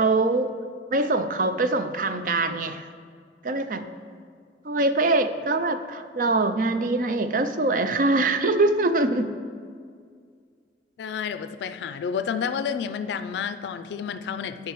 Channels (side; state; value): both; normal; correlation 0.13